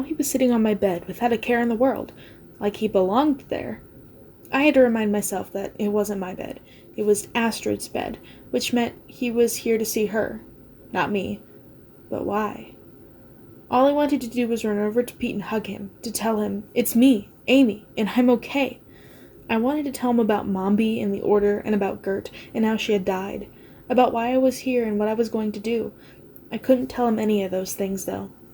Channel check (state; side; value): identical; both; correlation 1.00